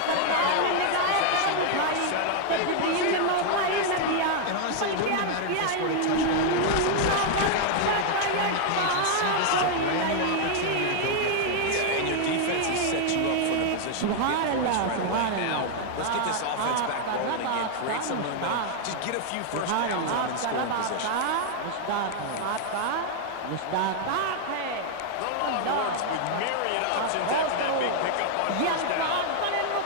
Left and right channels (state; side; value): different; both; correlation 0.00